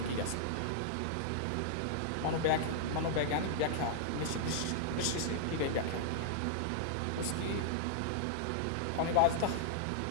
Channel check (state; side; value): different; both; correlation -0.01